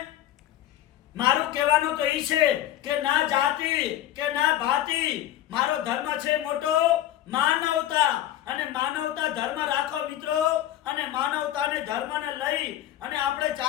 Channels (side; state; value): right; quieter; 12.7 dB